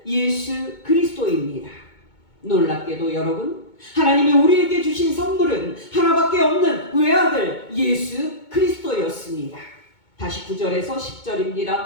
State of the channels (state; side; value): late; right; 2.2 ms